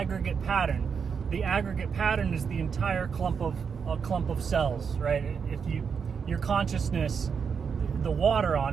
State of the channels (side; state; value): left; quieter; 6.3 dB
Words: pattern. The aggregate pattern is the entire clump of cells, right? If your consciousness, the water on